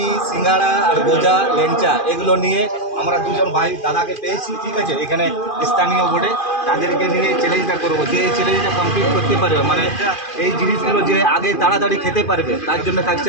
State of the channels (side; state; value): right; late; 2.5 ms